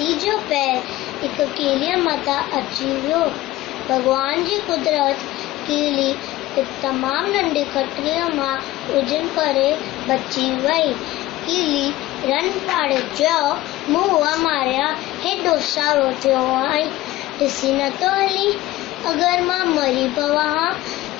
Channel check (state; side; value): quieter; right; 16.9 dB